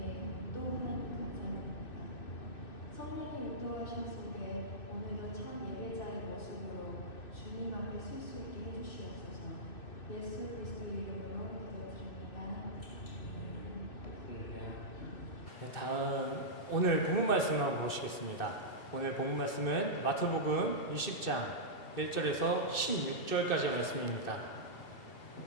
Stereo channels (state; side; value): late; right; 2.6 ms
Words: 또한 감사드립니다. 성령의 인도하심 속에 오늘도 참 예배자의 모습으로 주님 앞에 설 수 있게 해주시옵소서. 예수 그리스도 이름으로 기도드립니다. 네, 다음 오늘 본문 말씀을 한번 보시겠습니다. 오늘 본문 말씀은 마태복음 20장 1절에서 16절까지의 말씀입니다.